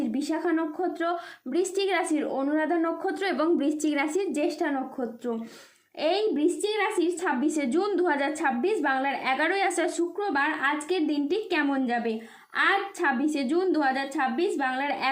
বিশাখা নক্ষত্র, বৃশ্চিক রাশির অনুরাধা নক্ষত্র এবং বৃশ্চিক রাশির জ্যেষ্ঠা নক্ষত্র। এই বৃশ্চিক রাশির 26শে জুন 2026 বাংলার 11ই আষাঢ় শুক্রবার আজকের দিনটি কেমন যাবে। আজ 26শে জুন 2026 বাংলার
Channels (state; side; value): identical; both; correlation 1.00